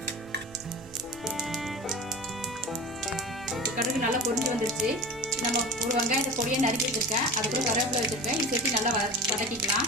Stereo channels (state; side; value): normal; both; correlation 0.32